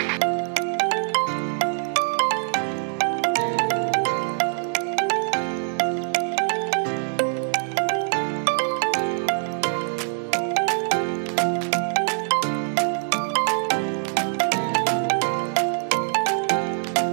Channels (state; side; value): silent; left; digital silence